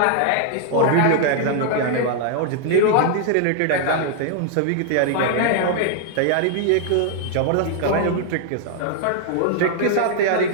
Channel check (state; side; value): different; both; correlation 0.00